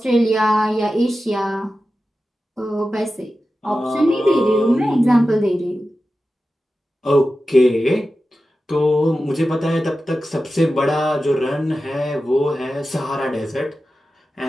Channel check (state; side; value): normal; both; correlation 0.93